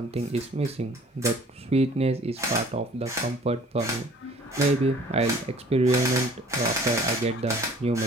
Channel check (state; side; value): normal; both; correlation 0.52